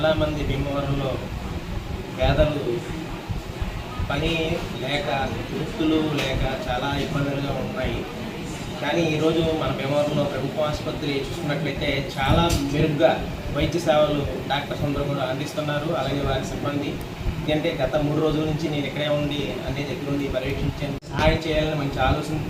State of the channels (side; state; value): both; identical; correlation 1.00